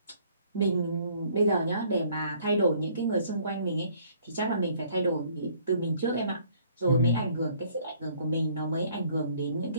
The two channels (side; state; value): both; inverted; correlation -0.61